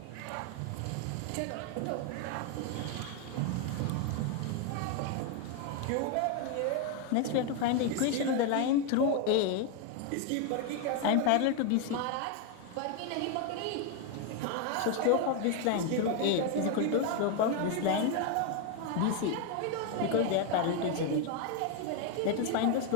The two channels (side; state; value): both; different; correlation 0.01